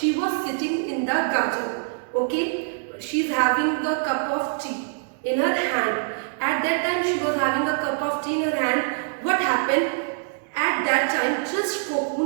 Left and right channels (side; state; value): left; silent; digital silence